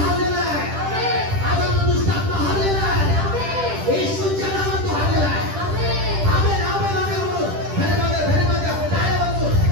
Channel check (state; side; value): late; left; 10 ms